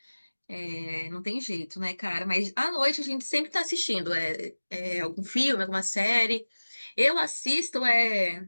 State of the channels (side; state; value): both; inverted; correlation -1.00